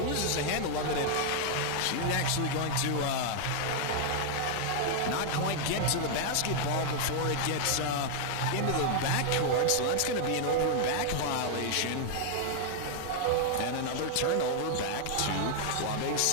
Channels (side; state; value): both; different; correlation 0.00